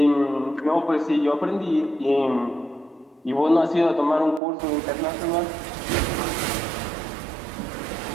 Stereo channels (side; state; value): left; drops out; at 4.4 s